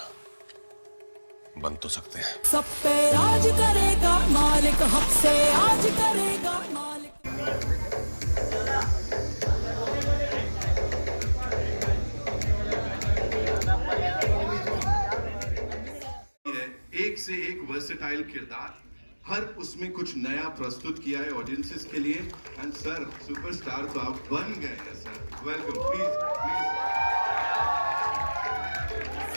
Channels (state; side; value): inverted; both; correlation -1.00